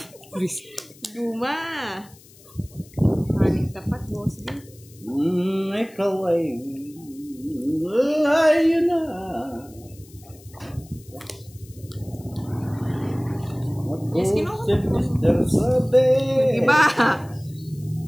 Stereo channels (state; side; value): noise; left; hiss, 24 dB below the sound